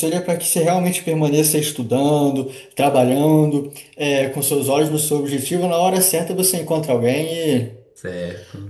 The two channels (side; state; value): both; identical; correlation 1.00